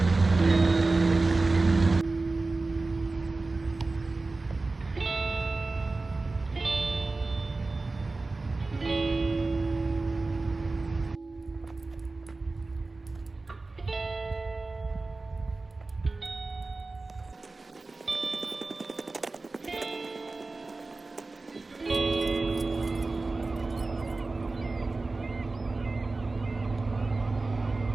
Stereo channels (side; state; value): left; quieter; 3.5 dB